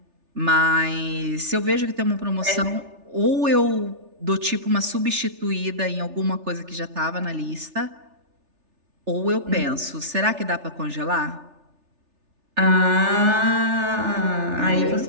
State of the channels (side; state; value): left; late; 3.3 ms